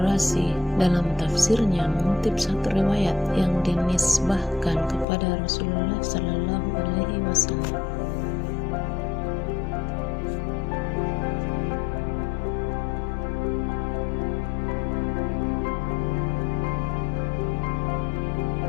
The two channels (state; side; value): drops out; right; at 5.1 s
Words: dalam tafsirnya mengutip satu riwayat yang dinisbahkan kepada Rasulullah Sallallahu Alaihi Wasallam.